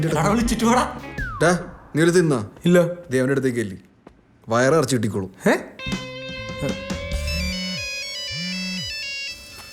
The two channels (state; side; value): identical; both; correlation 1.00